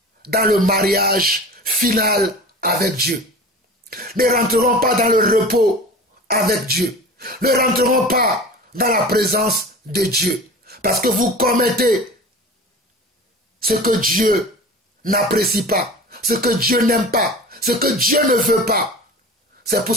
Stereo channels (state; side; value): normal; both; correlation 0.36